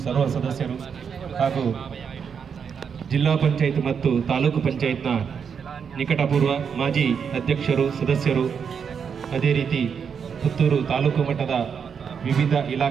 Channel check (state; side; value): quieter; left; 6.8 dB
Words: ಸರ್ವ ಸದಸ್ಯರು ಹಾಗೂ ಜಿಲ್ಲಾ ಪಂಚಾಯತ್ ಮತ್ತು ತಾಲೂಕು ಪಂಚಾಯತ್ನ ನಿಕಟಪೂರ್ವ ಮಾಜಿ ಅಧ್ಯಕ್ಷರು, ಸದಸ್ಯರು, ಅದೇ ರೀತಿ ಪುತ್ತೂರು ತಾಲೂಕು ಮಟ್ಟದ ವಿವಿಧ